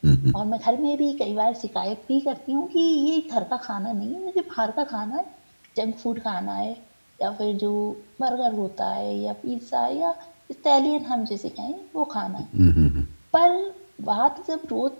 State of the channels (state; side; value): inverted; both; correlation -1.00